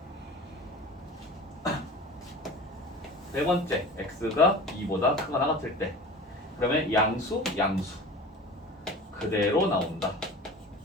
네 번째, x가 2보다 크거나 같을 때 그러면 양수 그대로 나온다.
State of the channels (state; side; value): normal; both; correlation 0.37